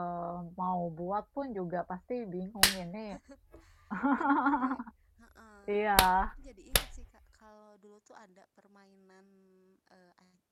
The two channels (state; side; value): identical; both; correlation 1.00